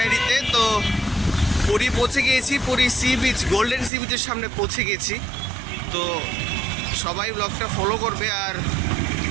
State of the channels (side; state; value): left; drops out; at 3.9 s